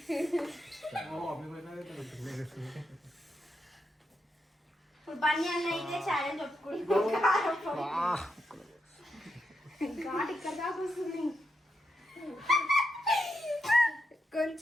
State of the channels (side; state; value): both; normal; correlation 0.84